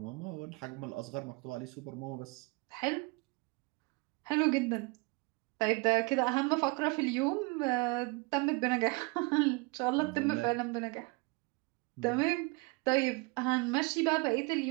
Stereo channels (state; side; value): quieter; left; 27.4 dB